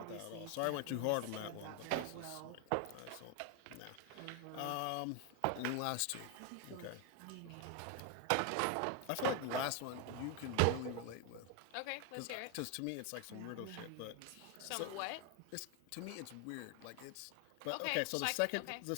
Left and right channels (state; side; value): different; both; correlation 0.01